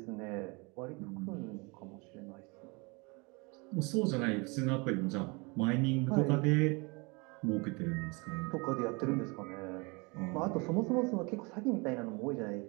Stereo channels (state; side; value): quieter; left; 28.6 dB